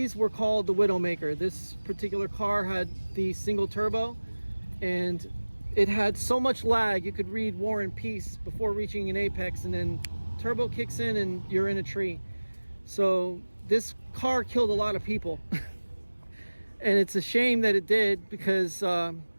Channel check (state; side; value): inverted; both; correlation -1.00